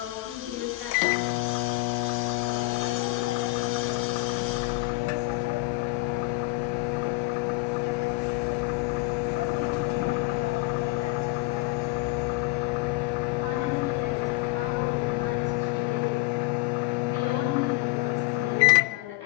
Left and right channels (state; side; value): quieter; right; 22.1 dB